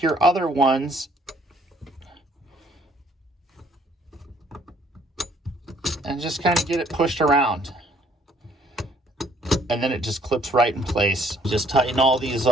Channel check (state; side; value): normal; both; correlation 0.63